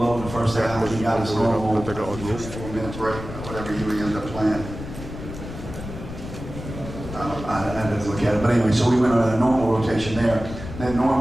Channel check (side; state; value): left; noise; rumble, 10 dB below the sound